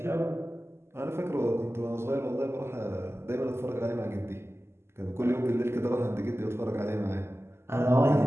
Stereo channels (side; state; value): left; late; 0.12 ms